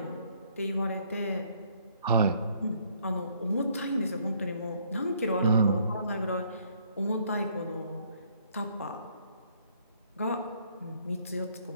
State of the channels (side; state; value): both; inverted; correlation -0.65